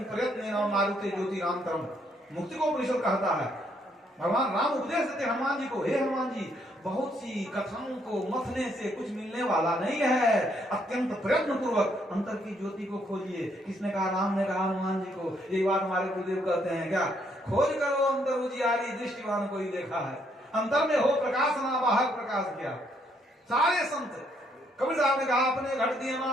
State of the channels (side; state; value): both; normal; correlation 0.71